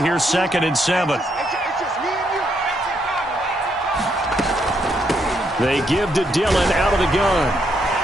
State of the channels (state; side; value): normal; both; correlation 0.76